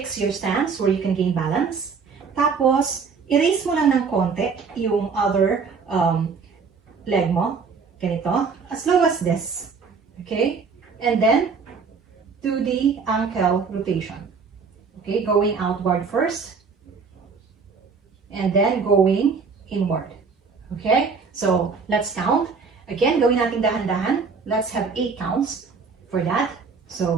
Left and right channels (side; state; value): left; quieter; 5.2 dB